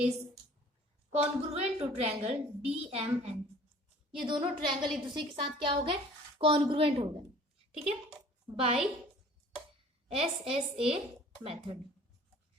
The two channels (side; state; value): both; normal; correlation 0.50